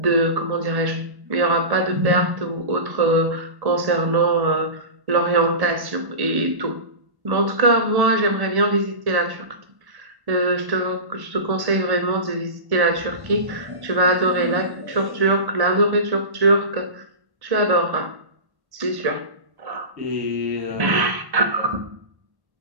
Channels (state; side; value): late; left; 1.1 ms